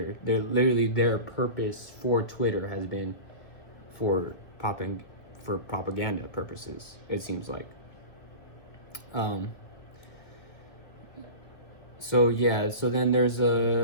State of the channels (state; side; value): late; right; 2.0 ms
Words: They're literally, their purpose for Twitter has been for propaganda purposes, it seems like. So yeah, so then there's